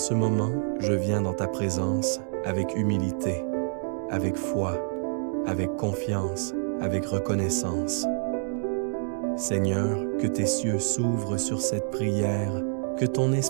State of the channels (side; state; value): left; silent; digital silence